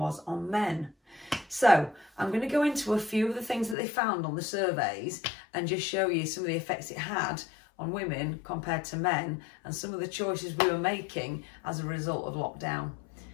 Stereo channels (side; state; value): right; drops out; at 3.8 s